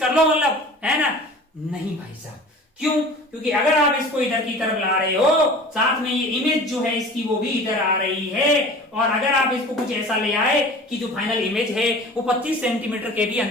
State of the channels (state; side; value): normal; both; correlation 0.41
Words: कर लो, मतलब है ना? नहीं भाई साहब, क्यों? क्योंकि अगर आप इसको इधर की तरफ ला रहे हो, साथ में ये इमेज जो है इसकी वो भी इधर आ रही है, और अगर आप इसको कुछ ऐसा ले आए कि जो फाइनल इमेज है वो 25 सेंटीमीटर के भी